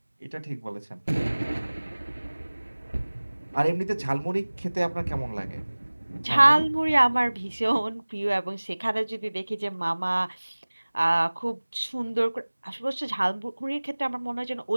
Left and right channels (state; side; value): inverted; both; correlation -1.00